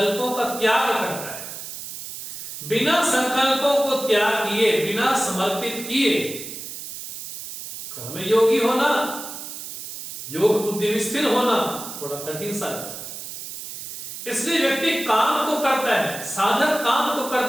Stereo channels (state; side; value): noise; right; hiss, 10 dB below the sound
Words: का त्याग करता है। बिना संकल्पों को त्याग किए, बिना समर्पित किए कर्म योगी होना, योग बुद्धि में स्थिर होना थोड़ा कठिन सा है। इसलिए व्यक्ति काम तो करता है, साधक काम तो